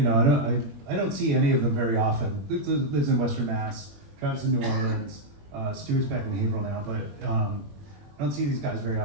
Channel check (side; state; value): left; late; 21 ms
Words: see any of them very often. Luke lives in Western Mass, Travis in New Orleans, Stuart's back in Haverhill now, but I don't see these guys very